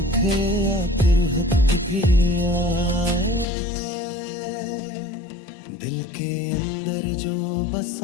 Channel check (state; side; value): drops out; right; at 3.5 s